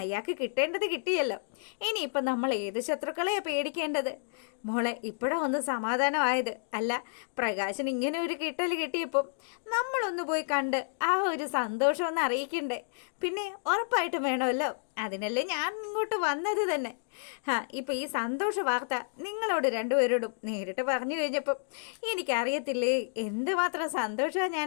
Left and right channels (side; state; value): right; silent; digital silence